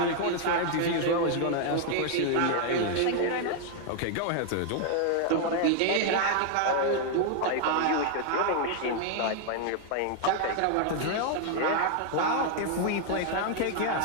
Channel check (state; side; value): different; both; correlation 0.00